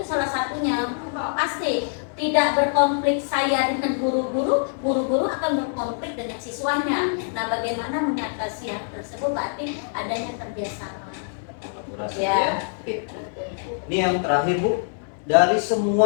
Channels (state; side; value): silent; right; 62 dB below the other